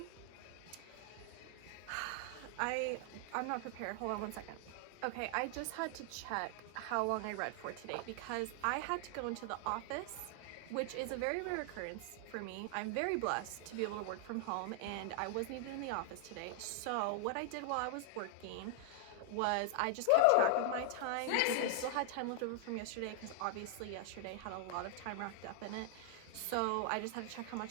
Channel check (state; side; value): different; both; correlation 0.00